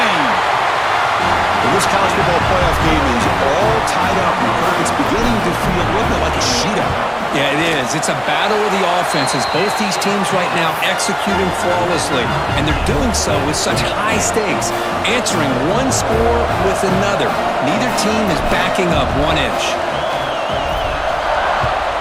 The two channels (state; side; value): identical; both; correlation 1.00